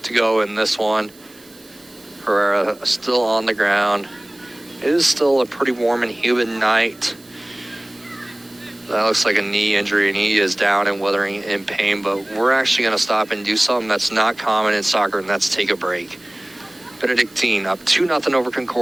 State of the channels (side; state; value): right; noise; hiss, 26 dB below the sound